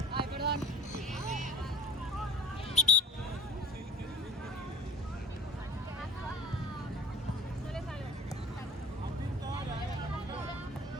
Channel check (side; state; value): both; normal; correlation 0.40